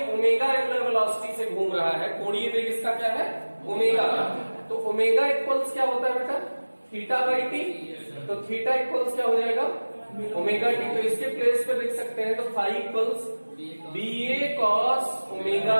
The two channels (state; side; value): inverted; both; correlation -1.00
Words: ओमेगा एंगुलर वेलोसिटी से घूम रहा है, कोणीय वेग इसका क्या है? ओमेगा। तो ओमेगा इक्वल्स क्या होता है बेटा? Theta by T. तो थीटा इक्वल्स क्या हो जाएगा? Omega T. तो इसके प्लेस पे लिख सकते हैं, तो फाई इक्वल्स बी ए कॉस ओमेगा